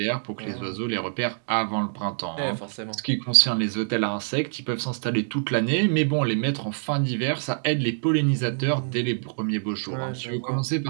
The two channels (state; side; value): silent; left; digital silence